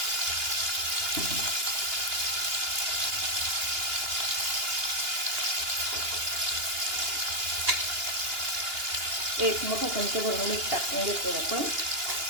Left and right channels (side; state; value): left; late; 2.8 ms